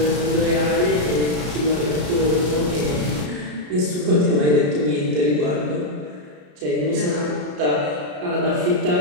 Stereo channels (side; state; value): left; late; 33 ms